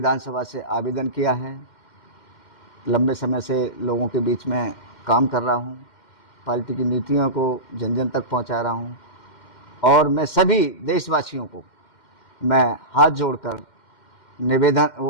से आवेदन किया है। लंबे समय से लोगों के बीच में काम कर रहा हूँ, पार्टी की नीतियों को जन जन तक पहुँचा रहा हूँ और मैं सभी देशवासियों को मैं हाथ जोड़कर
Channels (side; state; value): right; late; 2.1 ms